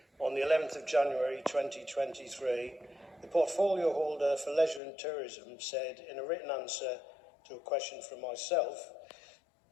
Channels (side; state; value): right; drops out; at 4.8 s